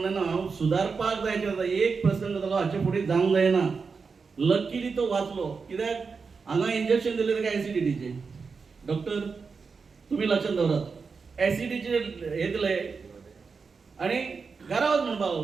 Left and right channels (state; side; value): quieter; left; 5.1 dB